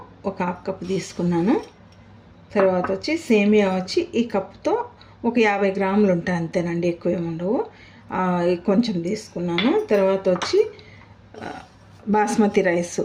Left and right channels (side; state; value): both; identical; correlation 1.00